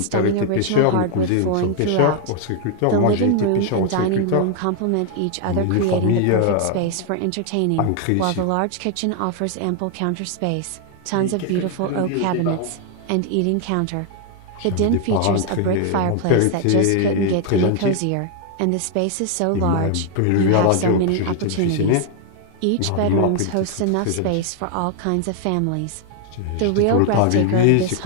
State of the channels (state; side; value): different; both; correlation 0.00